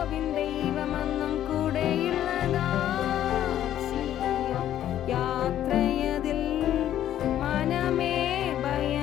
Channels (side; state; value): right; quieter; 11.6 dB